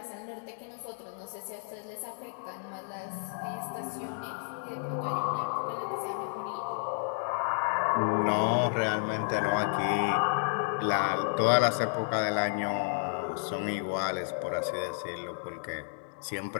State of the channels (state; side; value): silent; right; digital silence